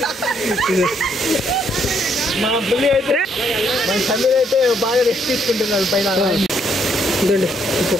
మా పులి అయితే మన సమీర్ అయితే బాగా రెస్ట్ తీసుకుంటున్నాడు పైన. ఇదండి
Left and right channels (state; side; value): normal; both; correlation 0.71